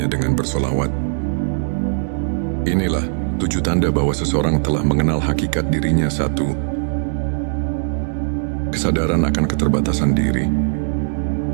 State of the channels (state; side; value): silent; left; digital silence